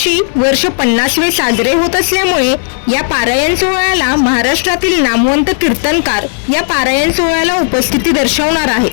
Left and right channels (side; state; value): right; silent; 73 dB below the other